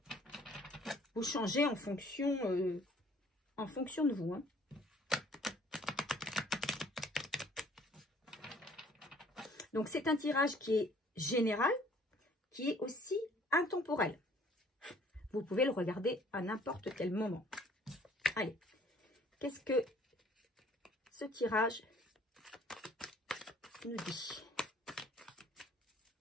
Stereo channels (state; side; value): normal; both; correlation 0.57